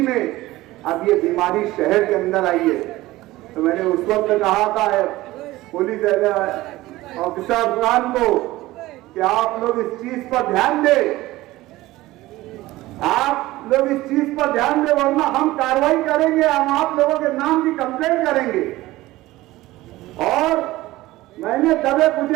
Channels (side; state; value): left; quieter; 17.8 dB